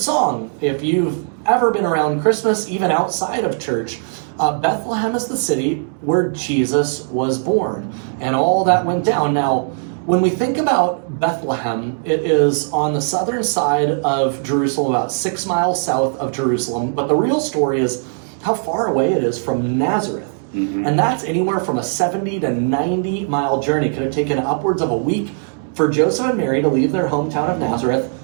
If you've ever been around Christmas, even outside of church, Bethlehem is the city where Jesus was born, and all that went down. Now, when we think about Bethlehem, it is on the southern side of Jerusalem, about 6 miles south of Jerusalem, but the real story is how far away it is from Nazareth. Mm-hmm. And that's anywhere from a 70 to 90 mile journey. It could have taken upwards of a week for Joseph and Mary to leave their hometown of Nazareth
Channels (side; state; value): left; silent; digital silence